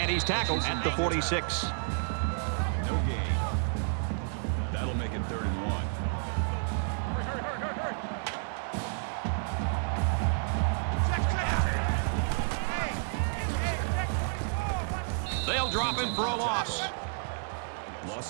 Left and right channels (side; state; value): left; silent; digital silence